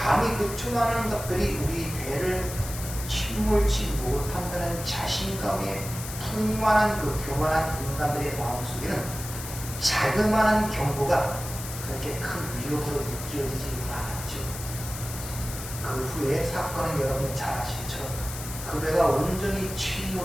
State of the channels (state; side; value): noise; left; hiss, 10 dB below the sound